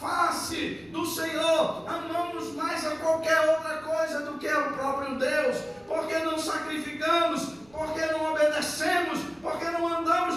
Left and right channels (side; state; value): right; noise; rumble, 29 dB below the sound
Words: do Senhor, amamos mais a qualquer outra coisa do que o próprio Deus, porque não sacrificamos, porque não obedecemos, porque não andamos